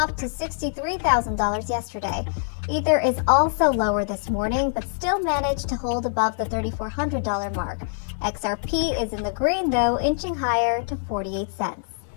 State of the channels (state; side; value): silent; right; digital silence